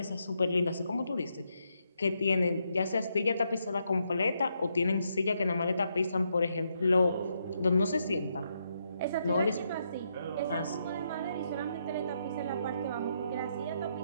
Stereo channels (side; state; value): both; inverted; correlation -0.79